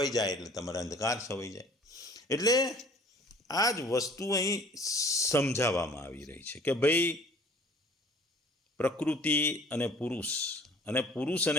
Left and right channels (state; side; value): normal; both; correlation 0.51